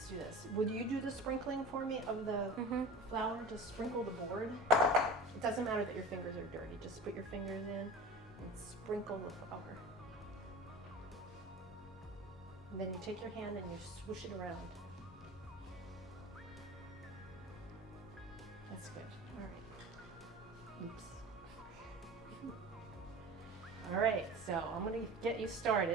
do this. Would you do the sprinkling for me of the flour? Just sprinkle the board. It doesn't matter that your fingers are dirty. Just put your fingers in and sprinkle the flour. And then you take your hand and you swoosh it around. That's good. All right. Oops. All right, so I'm gonna get you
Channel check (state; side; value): normal; both; correlation 0.35